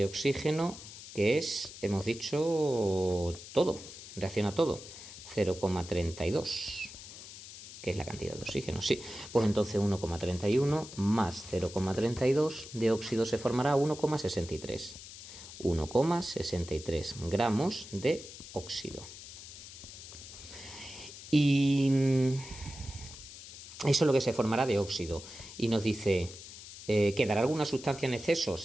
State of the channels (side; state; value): left; noise; hiss, 14 dB below the sound